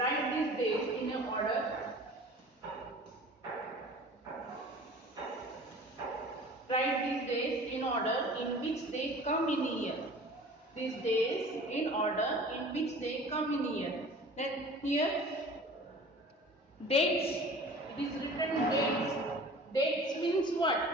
these dates in a order. Write these days in order in which they come in a year. These days in order in which they come in a year. Then here dates, it is written dates. Dates means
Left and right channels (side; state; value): both; normal; correlation 0.43